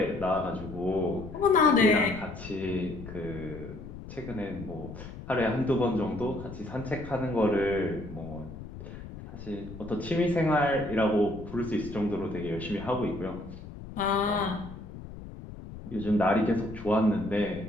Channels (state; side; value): noise; left; rumble, 13 dB below the sound